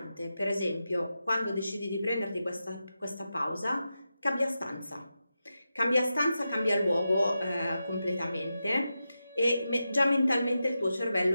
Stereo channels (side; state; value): both; inverted; correlation -0.90